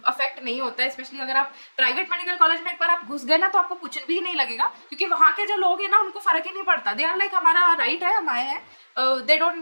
नहीं होता है, स्पेशली अगर आप प्राइवेट मेडिकल कॉलेज में एक बार आप घुस गए ना, तो आपको कुछ भी नहीं लगेगा, क्योंकि वहाँ के जो लोग हैं ना उनको फ़र्क ही नहीं पड़ता। दे आर लाइक हमारा राइट है, हम आए हैं, दे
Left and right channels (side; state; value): both; inverted; correlation -1.00